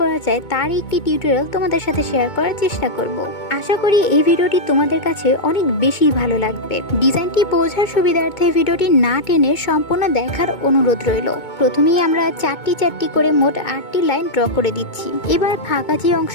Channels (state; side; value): late; right; 2.2 ms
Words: করা যায় তার একটি টিউটোরিয়াল তোমাদের সাথে শেয়ার করার চেষ্টা করব। আশা করি এই ভিডিওটি তোমাদের কাছে অনেক বেশি ভালো লাগবে। ডিজাইনটি বোঝার সুবিধার্থে ভিডিওটি না টেনে সম্পূর্ণ দেখার অনুরোধ রইল। প্রথমেই আমরা চারটি করে মোট 8টি লাইন ড্র করে দিচ্ছি। এবার ফাঁকা যে